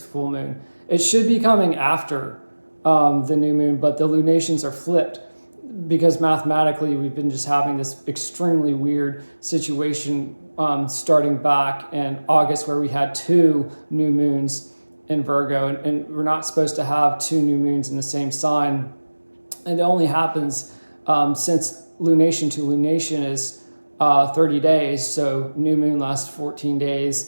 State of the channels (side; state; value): both; inverted; correlation -1.00